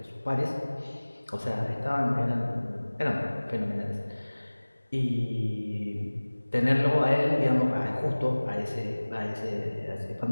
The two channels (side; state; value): both; inverted; correlation -1.00